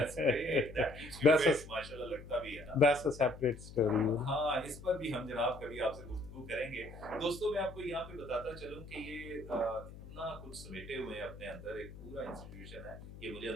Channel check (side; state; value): left; noise; hum, 14 dB below the sound